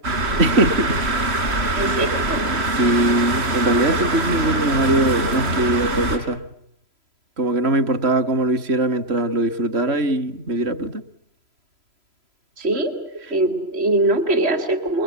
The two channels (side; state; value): left; late; 3.0 ms